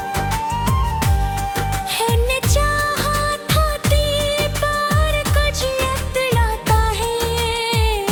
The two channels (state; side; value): identical; both; correlation 1.00